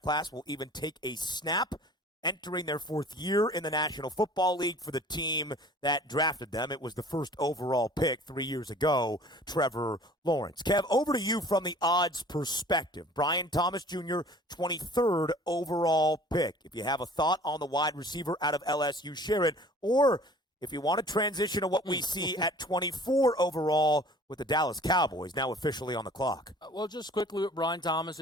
class will even take a snap, entering their 4th year in the National Football League for the team that drafted them. It was the first overall pick 3 years ago, Trevor Lawrence. Kev, over to you from the odds perspective. Brian Thomas Jr., 23rd overall pick. If you have a thought on the wide receiver out of LSU, share it. Or if you want to transition to what we see at 24 overall with the Dallas Cowboys now officially on the clock. Well, just quickly with Brian Thomas,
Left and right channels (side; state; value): both; normal; correlation 0.48